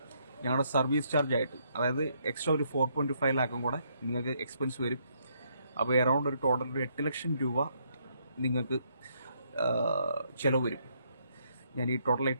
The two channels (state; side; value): inverted; both; correlation -0.72